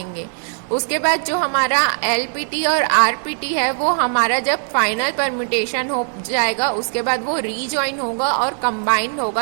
उसके बाद जो हमारा LPT और RPT है वो हमारा जब फाइनल परम्यूटेशन हो जाएगा उसके बाद वो रीजॉइन होगा और कंबाइंड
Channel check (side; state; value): left; silent; 66 dB below the other